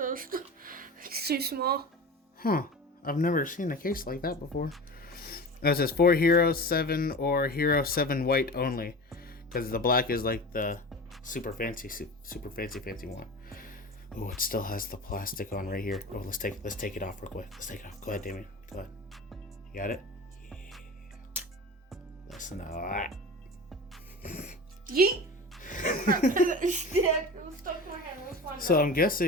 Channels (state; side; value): normal; both; correlation 0.32